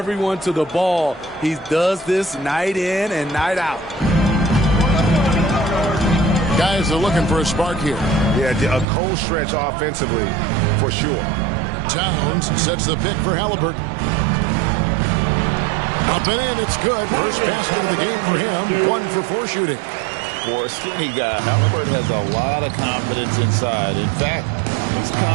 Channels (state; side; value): drops out; left; at 8.8 s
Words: to the ball. He does this night in and night out. Guys are looking for a spark here. Yeah, a cold stretch offensively for sure. Towns sets the pick for Halliburton. Up and in, it's good. First basket of the game for him. 1 for 4 shooting. For a skinny guy, Halliburton has a lot of confidence inside. In fact, he's